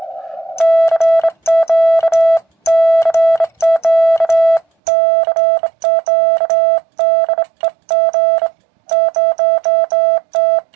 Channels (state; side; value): drops out; left; at 4.7 s